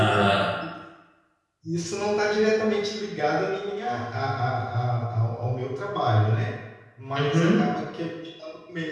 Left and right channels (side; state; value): both; identical; correlation 1.00